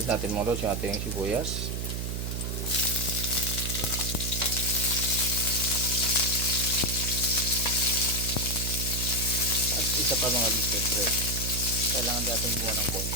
natin mga lods yung ating sibuyas. At isa pa mga lods, siyempre kailangan natin gumawa ng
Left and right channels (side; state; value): right; noise; hum, 2 dB below the sound